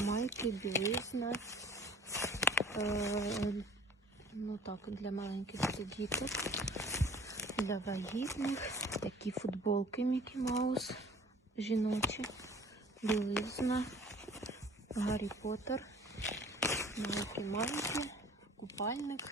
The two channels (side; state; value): both; normal; correlation 0.49